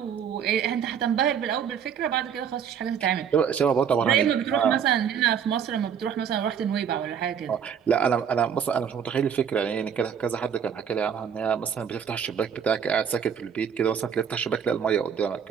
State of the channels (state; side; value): quieter; left; 7.8 dB